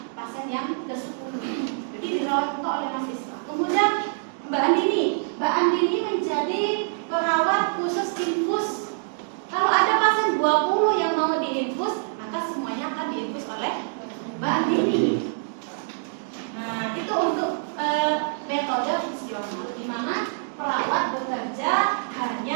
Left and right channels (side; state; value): left; silent; digital silence